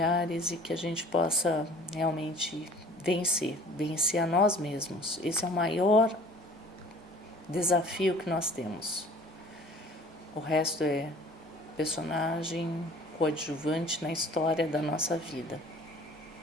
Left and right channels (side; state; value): both; normal; correlation 0.49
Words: e que a gente possa realmente vencer a nós mesmos. Esse é o maior desafio que nós temos. O resto é personagem coadjuvante na história da nossa vida,